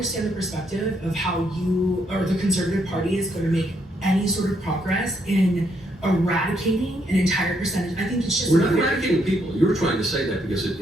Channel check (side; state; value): both; normal; correlation 0.74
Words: the perspective of how you or the Conservative Party is going to make any sort of progress in eradicating an entire percentage. I think it's just We're not eradicating people. You're trying to say that because